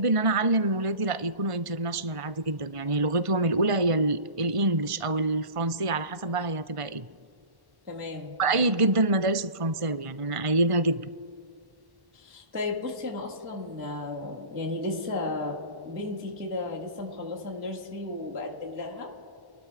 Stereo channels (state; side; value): late; left; 1.5 ms